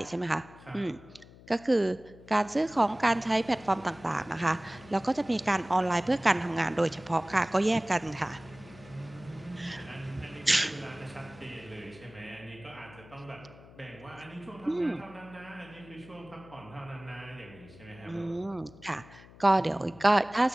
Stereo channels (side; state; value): left; noise; hum, 21 dB below the sound